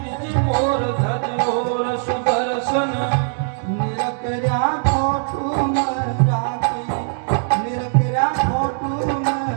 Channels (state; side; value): silent; left; digital silence